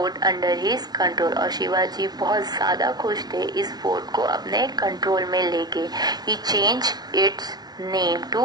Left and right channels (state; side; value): late; left; 0.19 ms